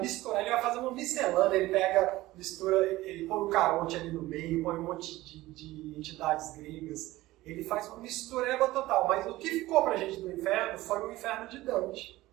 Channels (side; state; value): left; quieter; 17.7 dB